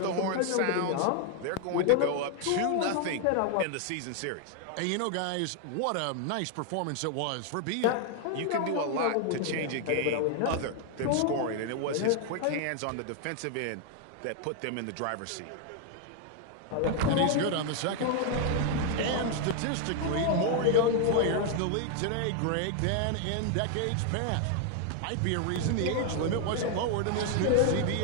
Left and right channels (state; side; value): different; both; correlation 0.00